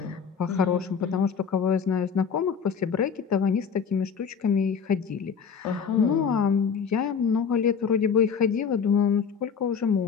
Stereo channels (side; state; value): right; quieter; 6.5 dB